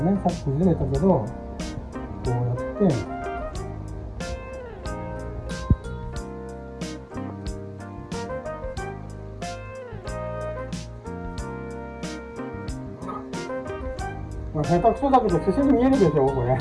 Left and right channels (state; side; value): identical; both; correlation 1.00